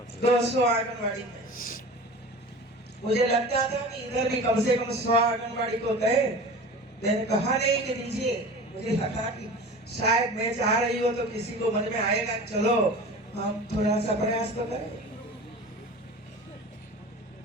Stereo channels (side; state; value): both; normal; correlation 0.36